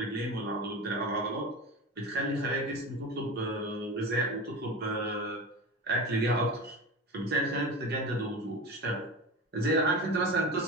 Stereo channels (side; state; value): both; normal; correlation 0.28